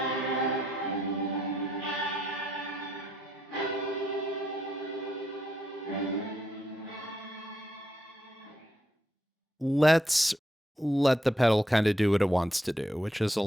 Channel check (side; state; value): both; normal; correlation 0.77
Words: Let's let the pedal kind of do what it wants to do, which is a